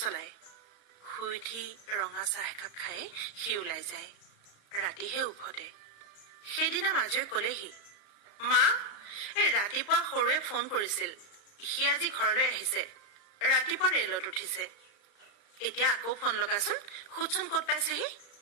শুই উঠি ৰঙা চাহ একাপ খাই সি ওলাই যায়। ৰাতিহে উভতে। সেইদিনা মাজুৱে কলেহি, মা, এই ৰাতিপুৱা সৰুৱে ফোন কৰিছিল, সি আজি ঘৰলৈ আহিছে, ৰাতিপুৱা ৰেলত উঠিছে। এতিয়া আকৌ ফোন লগাচোন, সুধচোন ক'ত পাইছেহি।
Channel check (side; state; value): right; late; 35 ms